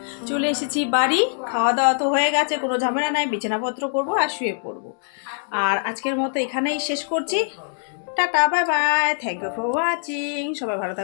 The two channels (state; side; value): silent; right; 64 dB below the other